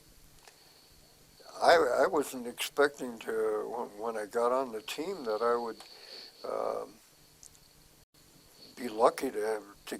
I wasn't expecting to, when I got on the team, that I would be lucky to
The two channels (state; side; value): identical; both; correlation 1.00